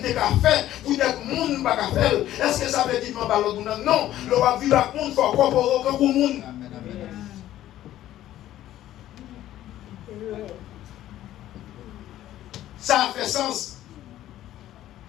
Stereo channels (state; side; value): quieter; right; 13.3 dB